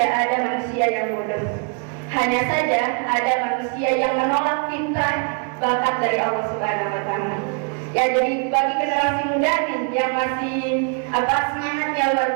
ada manusia yang bodoh. Hanya saja ada manusia yang menolak fitrah bakat dari Allah Subhanahu wa taala. Ya, jadi bagi generasi muda nih yang masih semangatnya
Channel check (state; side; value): quieter; left; 36.5 dB